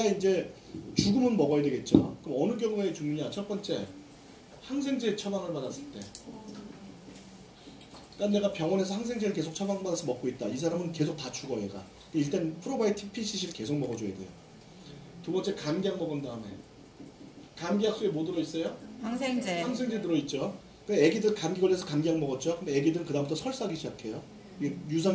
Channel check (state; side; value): identical; both; correlation 1.00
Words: 이제 죽으면 먹어야 되겠죠. 그럼 어느 경우에 죽느냐? 첫 번째, 항생제 처방을 받았을 때. 그러니까 내가 병원에서 항생제를 계속 처방받아서 먹고 있다. 이 사람은 계속 다 죽어 얘가. 일단 프로바이오틱 PCC를 계속 먹어줘야 돼요. 두 번째, 감기약 먹은 다음에. 감기약 속에 뭐 들어있어요? 항생제 들어있죠. 애기들 감기 걸려서 감기약 먹었죠. 그럼 애기들은 그다음부터 설사하기 시작해요.